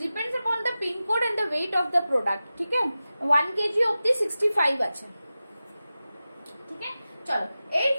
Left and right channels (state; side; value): inverted; both; correlation -0.94